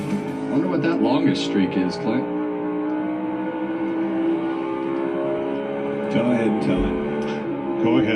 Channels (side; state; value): both; identical; correlation 1.00